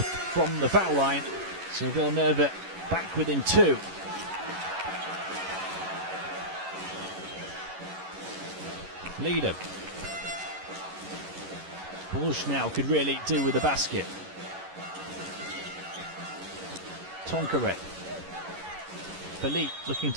from the foul line, so Villeneuve back within 2. Leader. Bourges now could really do with the basket. Tonqueret. Philippe looking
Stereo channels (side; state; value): left; late; 11 ms